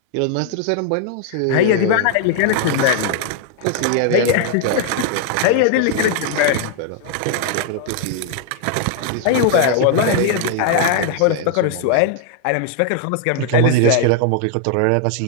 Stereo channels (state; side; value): different; both; correlation 0.00